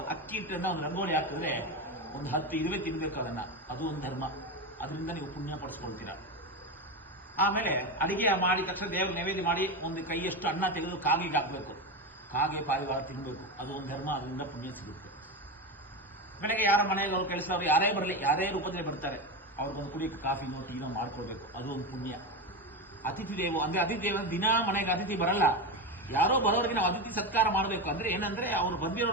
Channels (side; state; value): both; normal; correlation 0.17